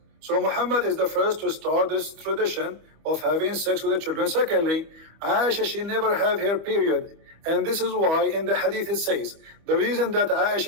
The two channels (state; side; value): late; left; 25 ms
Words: So Muhammad is the first to start this tradition of having sex with the children. Secondly, Aisha, she never have her period. And this is why in the hadith it says, the reason that